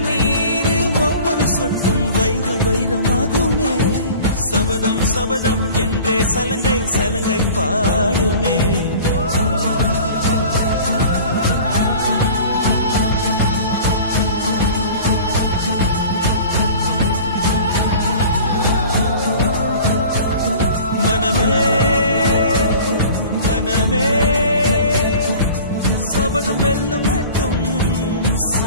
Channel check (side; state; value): both; inverted; correlation -0.42